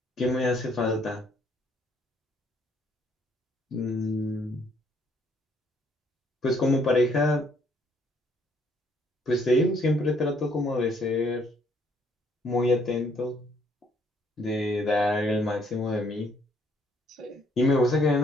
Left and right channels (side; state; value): both; normal; correlation 0.67